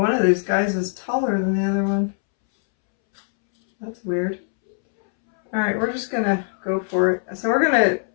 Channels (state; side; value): silent; right; 64 dB below the other